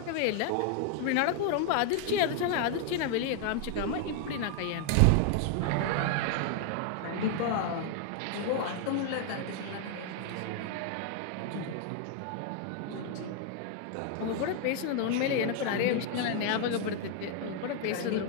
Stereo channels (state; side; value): different; both; correlation 0.00